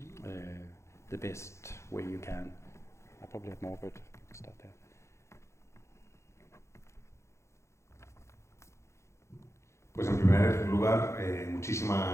the best way you can. I probably have more, but stop there. Pues en primer lugar,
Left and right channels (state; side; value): late; right; 0.14 ms